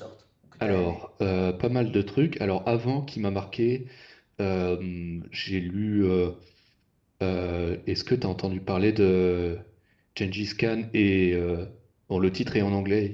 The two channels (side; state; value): both; identical; correlation 1.00